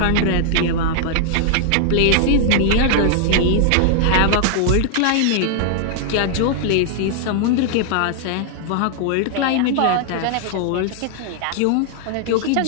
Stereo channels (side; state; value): both; different; correlation -0.01